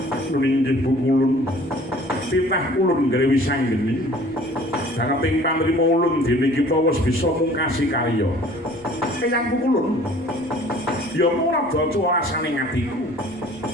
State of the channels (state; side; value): noise; right; rumble, 29 dB below the sound